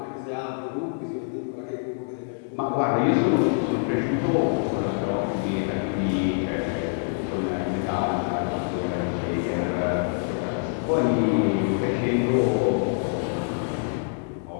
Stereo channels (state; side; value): silent; right; digital silence